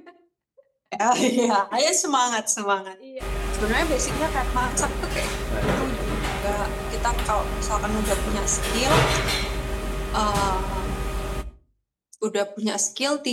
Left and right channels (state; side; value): identical; both; correlation 1.00